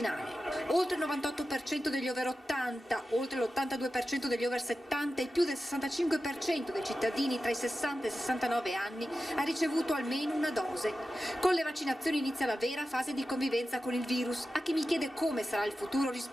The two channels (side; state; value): both; normal; correlation 0.93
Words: Oltre il 98% degli over 80, oltre l'82% degli over 70 e più del 65% dei cittadini tra i 60 e i 69 anni ha ricevuto almeno una dose. Con le vaccinazioni inizia la vera fase di convivenza con il virus. A chi mi chiede come sarà il futuro